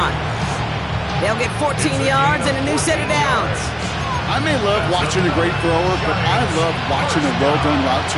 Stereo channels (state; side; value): identical; both; correlation 1.00